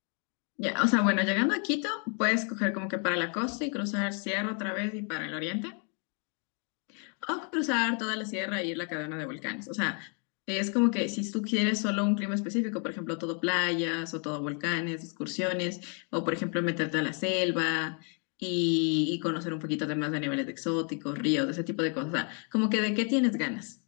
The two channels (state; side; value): quieter; right; 39.8 dB